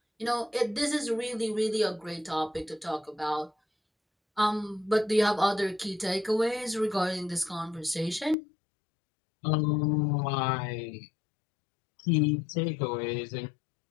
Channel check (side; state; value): right; drops out; at 8.3 s